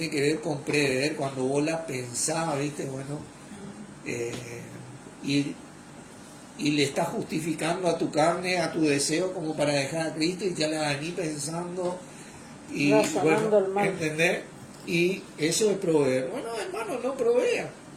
que ver con prever, cuando vos la pensás, ¿viste? Bueno, y le estás justificando a tu carne, a tu deseo, como para dejar a Cristo, y ya la venís pensando y bueno, el mal. ¿entendés? Y eso es proveer. Bueno, hermano, no provea.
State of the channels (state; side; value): identical; both; correlation 1.00